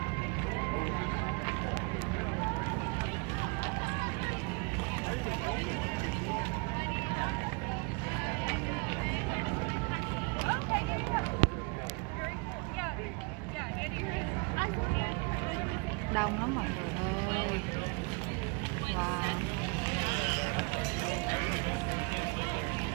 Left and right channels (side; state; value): left; quieter; 30.8 dB